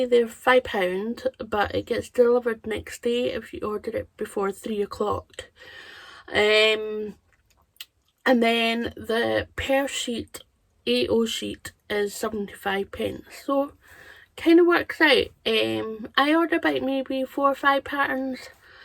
they're £5, but it gets delivered next day if you order it before 3 o'clock. And then the per sheet A0 sheet is 75p, so kind of works out. I order about maybe 4 or 5 patterns,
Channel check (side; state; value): both; identical; correlation 1.00